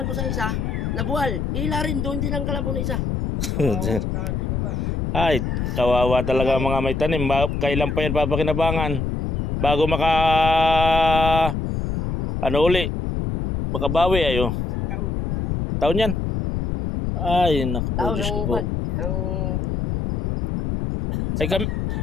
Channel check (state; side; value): noise; left; rumble, 1 dB below the sound